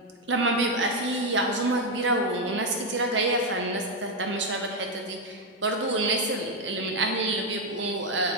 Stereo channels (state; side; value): normal; both; correlation 0.04